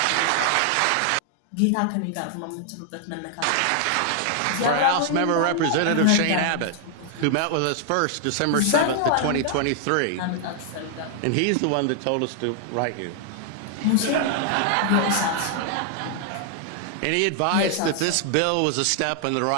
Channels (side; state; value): both; different; correlation 0.00